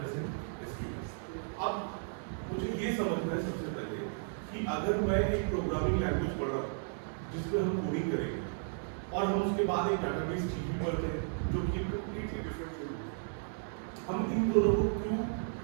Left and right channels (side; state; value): left; silent; 55 dB below the other